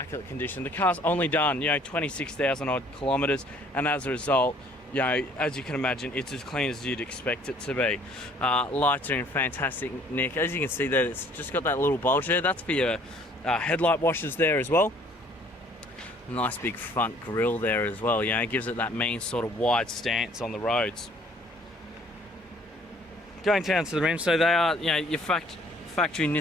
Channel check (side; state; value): both; normal; correlation 0.58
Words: condition. The car's only done, 26,000 odd kilometers, and as a result, as you can imagine, it's as clean as you'd expect it to be. Lights are in fantastic nick. As you can see there, it's just got that little bulge there. That's for your headlight washers there as well. Nice big front grille there as well, it gives it that mean sort of wide stance on the roads. Going down to the rims, so they are your factory